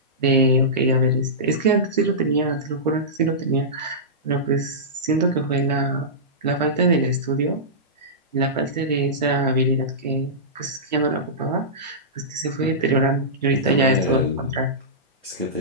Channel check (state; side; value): normal; both; correlation -0.17